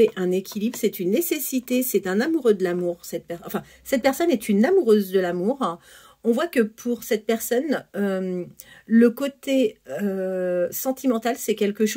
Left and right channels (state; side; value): identical; both; correlation 1.00